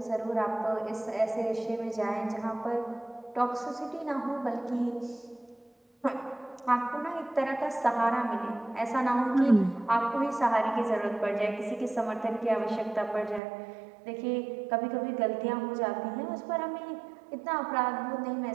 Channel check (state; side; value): drops out; left; at 13.4 s